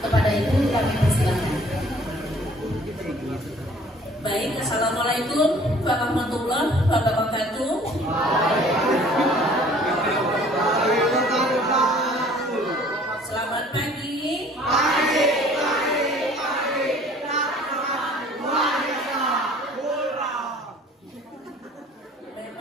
Kepada Ibu kami persilakan. Baik, Assalamualaikum warahmatullahi wabarakatuh. Selamat pagi.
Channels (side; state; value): both; normal; correlation 0.53